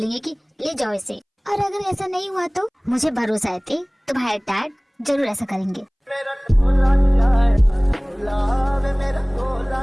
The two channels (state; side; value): identical; both; correlation 1.00